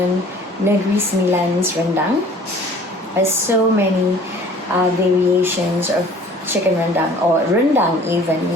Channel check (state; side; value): normal; both; correlation 0.50